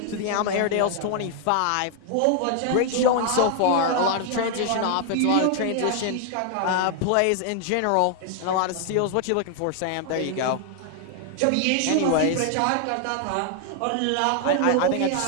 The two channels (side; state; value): both; different; correlation 0.00